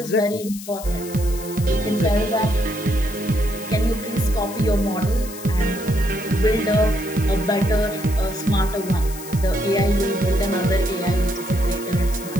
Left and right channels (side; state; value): left; noise; hiss, 14 dB below the sound